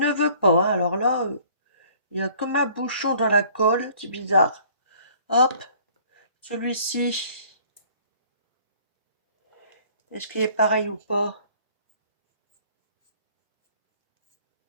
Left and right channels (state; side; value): inverted; both; correlation -0.55